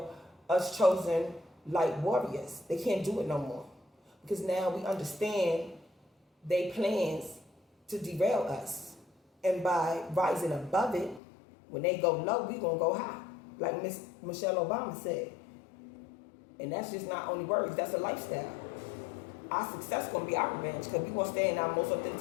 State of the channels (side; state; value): right; drops out; at 11.2 s